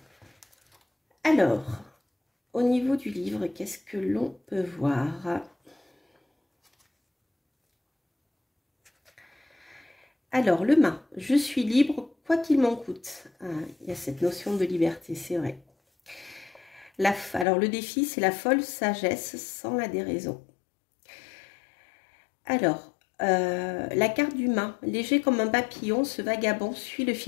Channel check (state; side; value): drops out; right; at 17.4 s